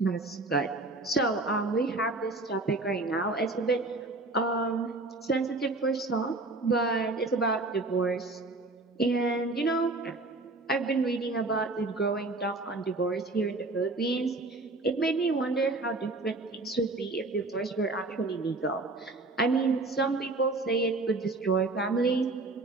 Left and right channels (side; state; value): left; quieter; 3.1 dB